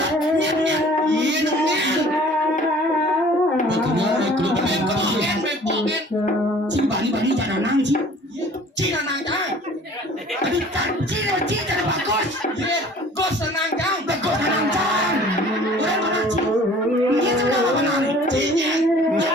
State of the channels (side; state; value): both; normal; correlation 0.50